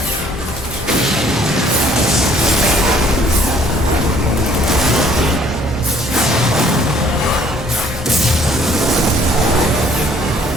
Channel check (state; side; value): normal; both; correlation 0.60